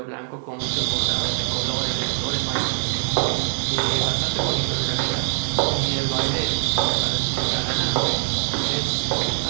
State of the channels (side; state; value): left; silent; 63 dB below the other